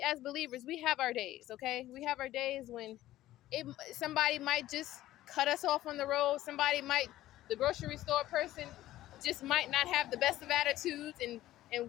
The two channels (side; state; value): right; quieter; 14.8 dB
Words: as believers, we have our days, okay? We have our days when somebody might just cut us off on the road. The grocery store person just might not have the best of attitudes, and